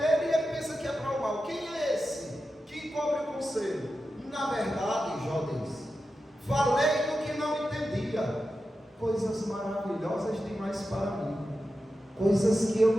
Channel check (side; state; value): both; normal; correlation 0.91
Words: e ele pensa que é para o mal. Quem é esse que encobre o conselho? Na verdade, Jó diz, falei do que não entendia, coisas maravilhosas demais para mim, coisas que eu